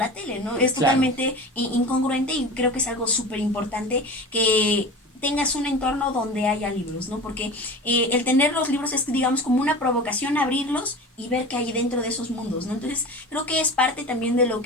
tele, ¿no? Es Claro. totalmente incongruente y creo que es algo súper importante que tengas un entorno donde haya libros, ¿no? Porque el tener los libros es, digamos, como una provocación a abrirlos y ver qué hay dentro de esos mundos, ¿no? Entonces, creo que es parte también de lo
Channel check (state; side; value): normal; both; correlation 0.33